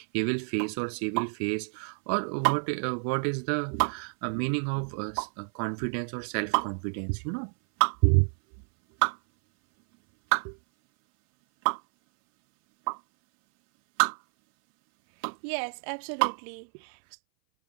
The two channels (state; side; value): silent; left; 59 dB below the other